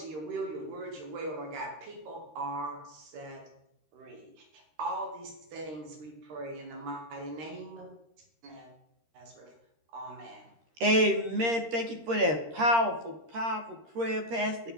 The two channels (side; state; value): left; late; 13 ms